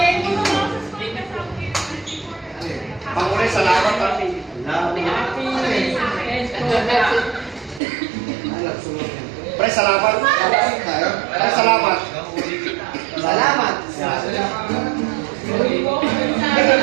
Pangulit, salamat pati. Pre, salamat. Pre, salamat. Salamat.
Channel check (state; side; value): drops out; left; at 7.8 s